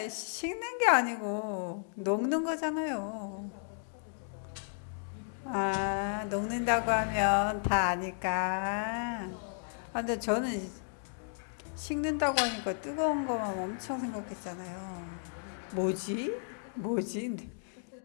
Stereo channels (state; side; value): silent; right; digital silence